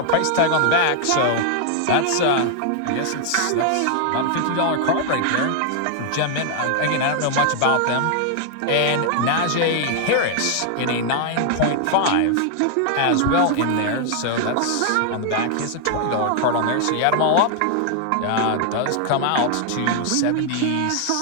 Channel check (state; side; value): different; both; correlation 0.00